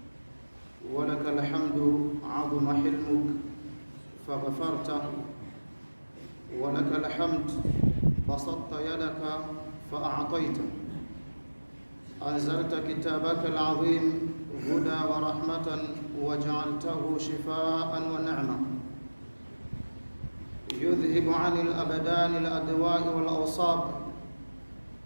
ولك الحمد عظم حلمك فغفرت، ولك الحمد بسطت يدك فأعطيت، أنزلت كتابك العظيم هدى ورحمة وجعلته شفاء ونعمة، يذهب عن الأبدان الأدواء والأوصاب،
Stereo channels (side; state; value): both; inverted; correlation -1.00